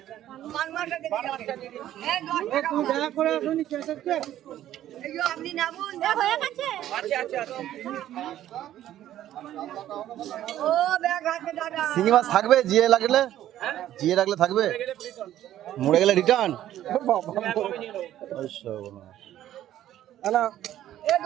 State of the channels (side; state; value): left; quieter; 12.5 dB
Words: শিঙি মাছ থাকবে জিয়ে লাগলে? জিয়ে রাখলে থাকবে, মরে গেলে রিটার্ন?